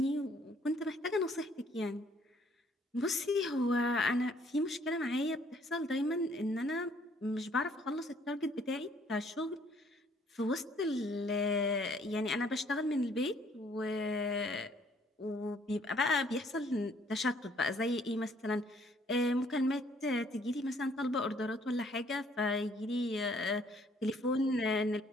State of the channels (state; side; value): normal; both; correlation 0.63